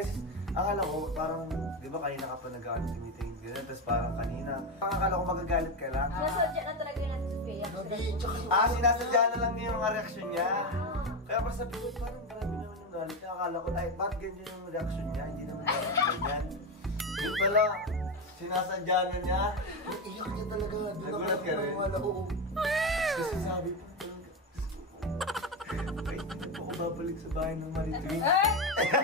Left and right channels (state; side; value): normal; both; correlation 0.13